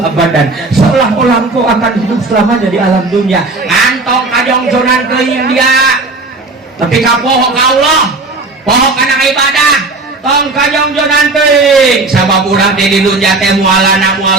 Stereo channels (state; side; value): quieter; left; 3.3 dB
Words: abadan seolah-olah engkau akan hidup selamanya di alam dunia antong kajongjonan ke India tapi kapoho ka Allah poho kana ibadah tong kajongjonan teuing sabab urang teh di dunya teh mualana